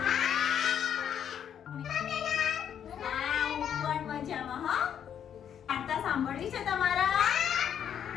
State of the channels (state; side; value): quieter; right; 8.9 dB